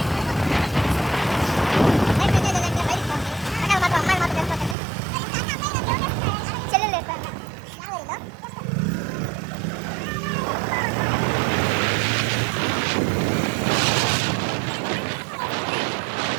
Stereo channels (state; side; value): drops out; left; at 4.8 s